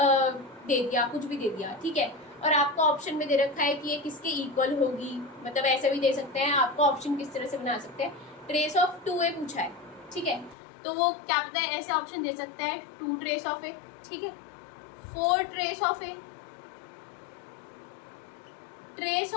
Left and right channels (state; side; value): drops out; right; at 10.6 s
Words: दे दिया, कुछ भी दे दिया, ठीक है, और आपको ऑप्शन में दे रखा है कि ये किसके इक्वल होगी, मतलब ऐसे भी दे सकते हैं, आपको ऑप्शन किस तरह से बना सकते हैं। ट्रेस ऑफ 2a पूछा है, ठीक है, तो वो क्या पता है ऐसे ऑप्शन दे सकता है 2 ट्रेस ऑफ a, ठीक है, 4 trace of a, trace